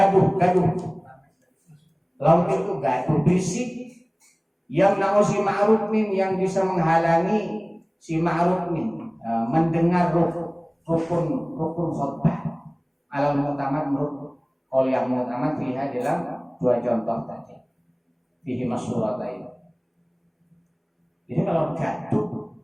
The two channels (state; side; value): identical; both; correlation 1.00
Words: Laut itu gaduh berisik yang nau si ma'ruf min yang bisa menghalangi si ma'ruf min mendengar rukun khutbah alal mu'tamad menurut qaul yang mu'tamad fiha dalam dua contoh tadi fihi masyhuratain. Jadi kalau gaduh